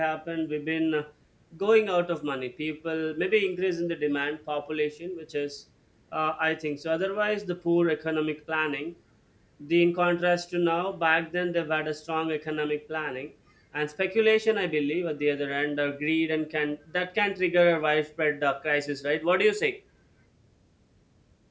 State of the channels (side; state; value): both; identical; correlation 1.00